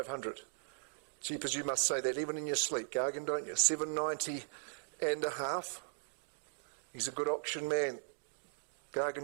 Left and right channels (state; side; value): silent; left; digital silence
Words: Jeepers, you must say that even in your sleep, Gargan, don't you? 790 and a half. He's a good auction man.